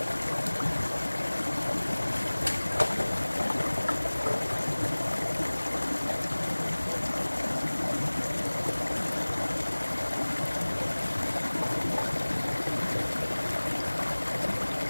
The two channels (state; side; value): inverted; both; correlation -1.00